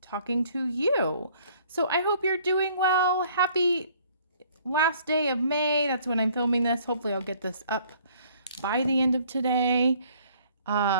talking to you. So I hope you're doing well. Happy last day of May. That's when I'm filming this. Hopefully I'll get this up by the end of today.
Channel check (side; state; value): both; inverted; correlation -0.59